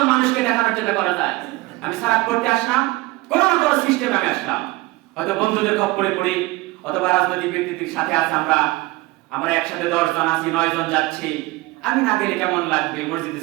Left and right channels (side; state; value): left; quieter; 20.9 dB